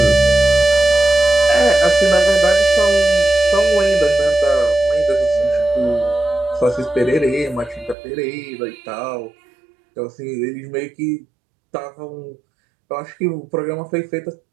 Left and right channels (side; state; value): left; drops out; at 8.0 s